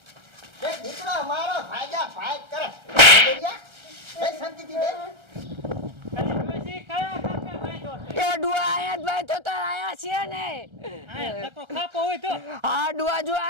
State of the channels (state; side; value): late; left; 1.3 ms